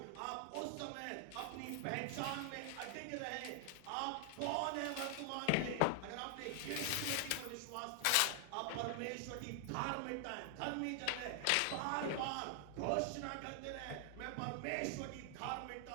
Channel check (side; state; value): both; different; correlation 0.00